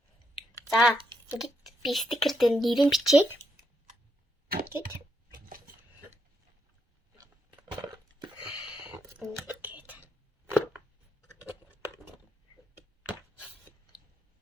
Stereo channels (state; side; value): normal; both; correlation 0.79